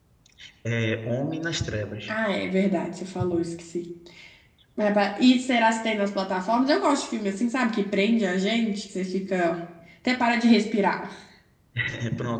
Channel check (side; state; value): both; identical; correlation 1.00